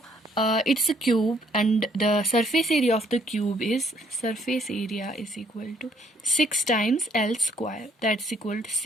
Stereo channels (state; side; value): normal; both; correlation 0.66